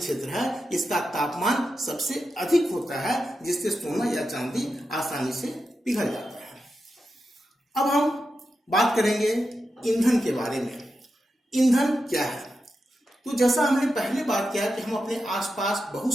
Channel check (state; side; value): normal; both; correlation 0.89